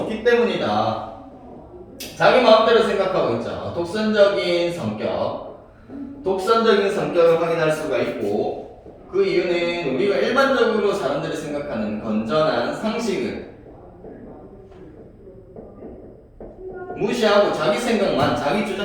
때문이다. 자기 마음대로 생각하고 있죠. 독선적인 성격을 확인할 수가 있고, 그 이유는 우리가 일반적으로 사람들이 생각하는 건전한 상식을 무시하고 자기 생각만, 자기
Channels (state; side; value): identical; both; correlation 1.00